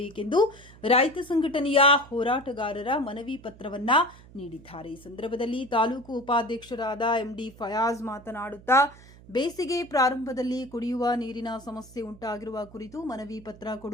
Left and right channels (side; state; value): right; noise; hum, 21 dB below the sound